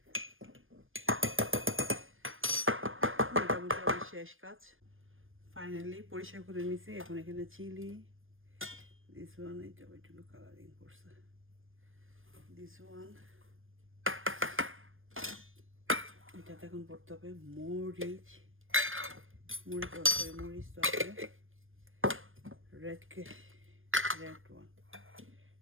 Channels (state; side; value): late; left; 0.59 ms